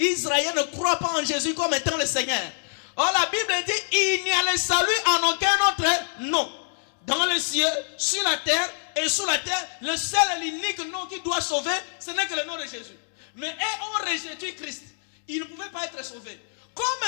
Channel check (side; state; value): right; silent; digital silence